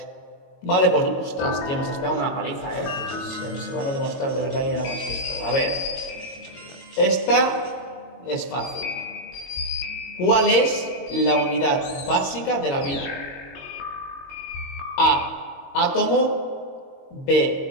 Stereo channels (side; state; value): right; late; 22 ms